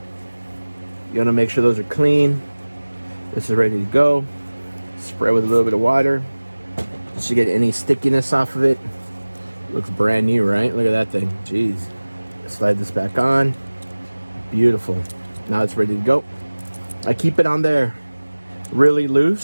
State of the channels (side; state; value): both; inverted; correlation -1.00